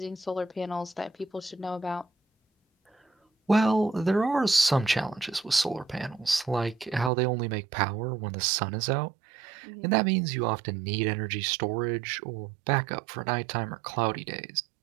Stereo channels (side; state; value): left; drops out; at 7.1 s